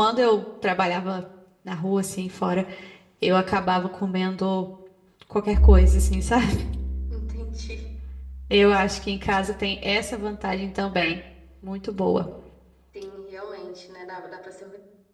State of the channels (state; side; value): identical; both; correlation 1.00